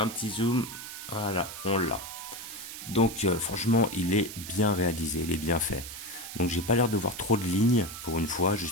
petit zoom, voilà, on l'a. Donc franchement il est bien réalisé, il est bien fait. Donc j'ai pas l'air de voir trop de lignes pour une fois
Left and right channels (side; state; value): right; noise; hiss, 10 dB below the sound